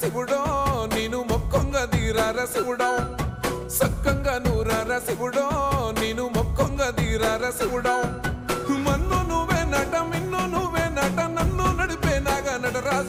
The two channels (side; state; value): both; identical; correlation 1.00